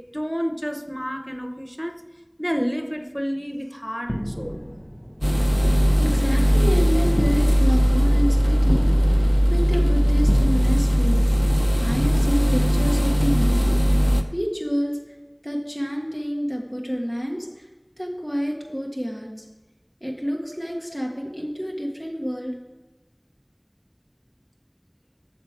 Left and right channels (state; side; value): identical; both; correlation 1.00